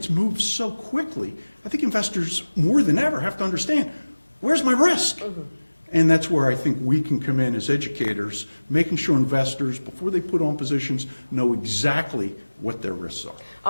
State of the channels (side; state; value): both; inverted; correlation -1.00